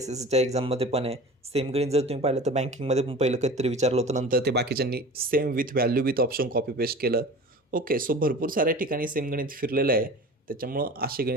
एक्झाममध्ये पण आहे. सेम गणित जर तुम्ही पाहिलं तर बँकिंगमध्ये पण पहिलं कधीतरी विचारलं होतं, नंतर ते बाकीच्यांनी same with value with option copy paste केलं. ओके. सो भरपूर साऱ्या ठिकाणी सेम गणित फिरलेलं आहे. त्याच्यामुळं अशी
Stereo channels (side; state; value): both; normal; correlation 0.37